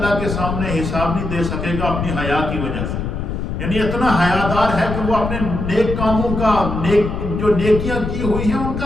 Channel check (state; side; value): noise; left; rumble, 4 dB below the sound